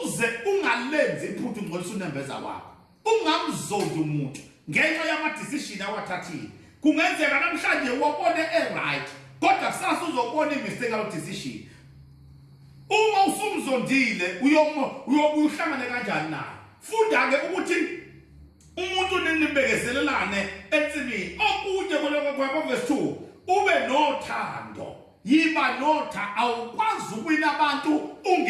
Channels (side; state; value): both; identical; correlation 1.00